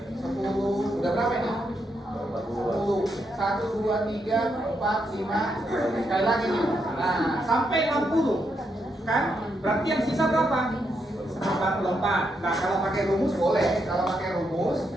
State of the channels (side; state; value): both; normal; correlation 0.80